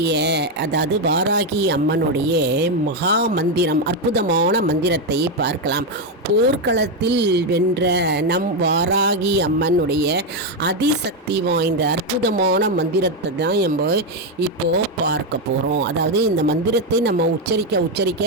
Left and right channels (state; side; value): normal; both; correlation 0.06